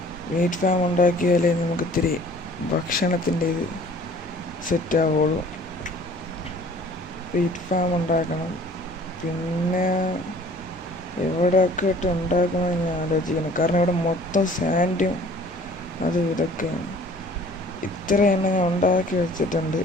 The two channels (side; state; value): both; normal; correlation 0.51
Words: വീറ്റ് ഫാം ഉണ്ടാക്കിയാലേ നമുക്ക് ഇത്തിരി ഭക്ഷണത്തിൻ്റെ ഇത് സെറ്റാവുള്ളൂ. വീറ്റ് ഫാം ഉണ്ടാക്കണം. പിന്നെ എവിടെയൊക്കെ ഇട്ട് ഉണ്ടാക്കണമെന്ന് ഞാൻ ആലോചിക്കണം. കാരണം ഇവിടെ മൊത്തം സാൻഡും അത് ഇതൊക്കെയാണ്. ഇത്ര എണ്ണം ഞാൻ ഉണ്ടാക്കി വെച്ചിട്ടുണ്ട്.